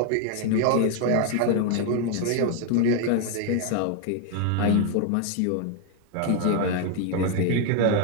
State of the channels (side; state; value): both; different; correlation 0.00